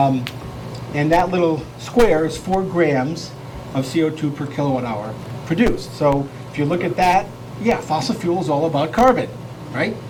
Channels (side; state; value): both; identical; correlation 1.00